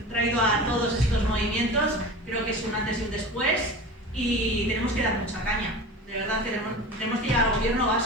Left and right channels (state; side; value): normal; both; correlation 0.33